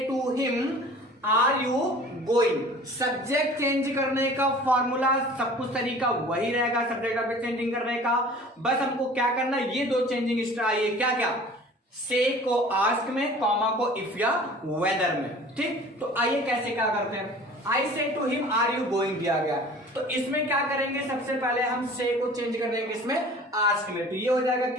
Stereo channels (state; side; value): normal; both; correlation 0.45